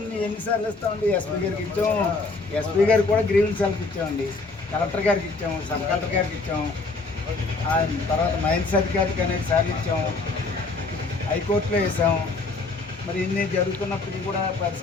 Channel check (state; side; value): quieter; right; 3.7 dB